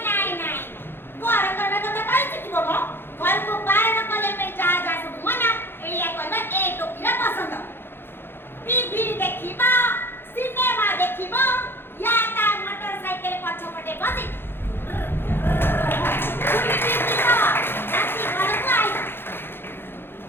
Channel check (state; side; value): late; right; 0.10 ms